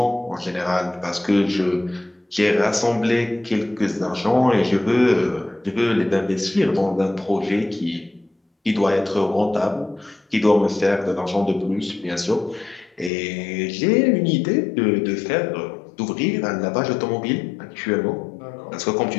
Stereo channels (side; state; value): right; drops out; at 13.1 s